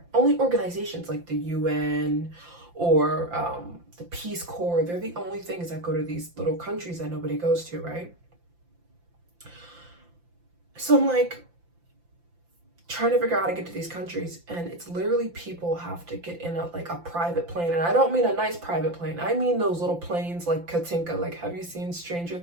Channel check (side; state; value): left; late; 5.8 ms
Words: Only organizations like the UN or the Peace Corps, they're the only things that go to these little countries that nobody goes to, right? So I'm like trying to figure out how to get to these countries, and it's literally people have to get in a private plane. And I don't mean a nice private plane. I mean those little planes like Katinka. Like, have you seen Stranger